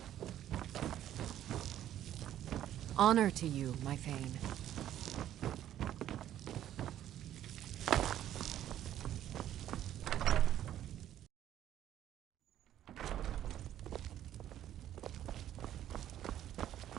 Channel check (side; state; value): left; quieter; 11.7 dB